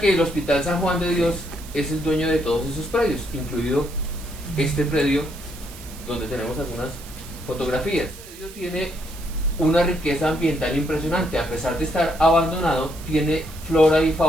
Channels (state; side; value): noise; right; hiss, 17 dB below the sound